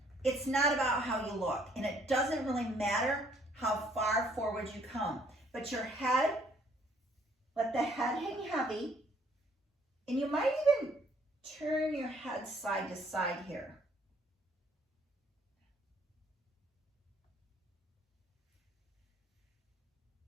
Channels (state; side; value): normal; both; correlation 0.64